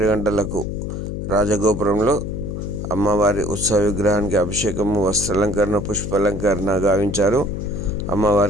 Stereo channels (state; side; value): noise; left; hum, 5 dB below the sound